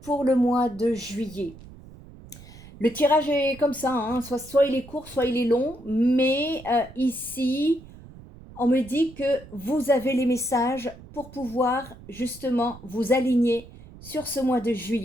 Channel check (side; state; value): right; noise; rumble, 19 dB below the sound